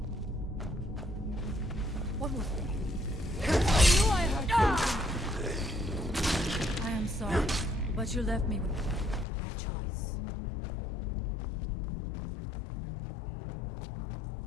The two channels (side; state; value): right; drops out; at 9.2 s